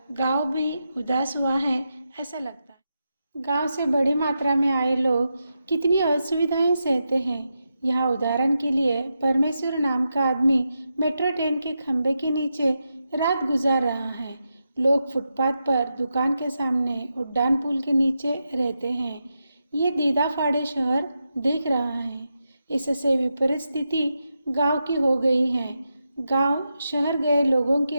गांव भी उदास हुआ है, ऐसा लगता है। गांव से बड़ी मात्रा में आए लोग कितनी असुविधाएं सहते हैं, यहाँ उदाहरण के लिए परमेश्वर नाम का आदमी मेट्रो ट्रेन के खंभे के नीचे रात गुजार रहा है। लोग फुटपाथ पर दुकान के सामने उड्डान पुल के नीचे रहते हैं। ये दीदा फाड़े शहर देख रहा है। इससे विपरीत स्थिति गांव की हो गई है। गांव शहर गए लोगों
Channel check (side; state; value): both; inverted; correlation -0.87